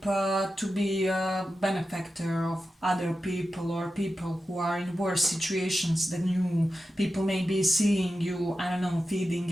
to be a benefactor of other people, or people who are in worse situations than you. People may be seeing you, I don't know,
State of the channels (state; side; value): normal; both; correlation 0.91